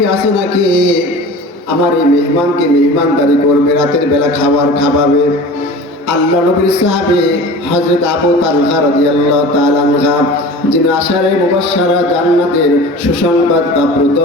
আছে নাকি আমার এই মেহমানকে মেহমানদারি করবে, রাতের বেলা খাবার খাওয়াবে? আল্লাহ নবীর সাহাবী হযরত আবু তালহা রাদিয়াল্লাহু তাআলা আনহা, যিনি আশারে মুবাশশারা জান্নাতের সুসংবাদ প্রাপ্ত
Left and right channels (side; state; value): both; normal; correlation 0.38